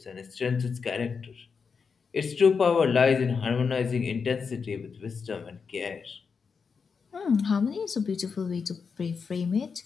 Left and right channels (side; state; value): right; quieter; 5.6 dB